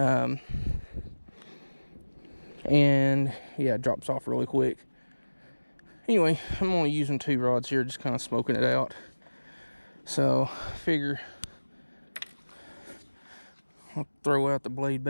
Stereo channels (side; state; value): both; inverted; correlation -1.00